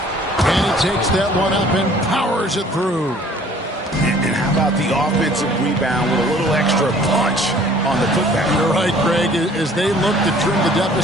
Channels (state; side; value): normal; both; correlation 0.54